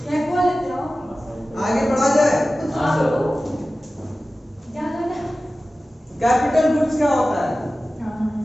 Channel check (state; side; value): normal; both; correlation 0.96